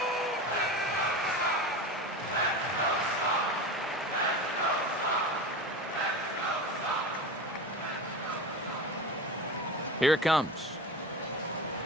Here it comes.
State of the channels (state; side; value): normal; both; correlation 0.28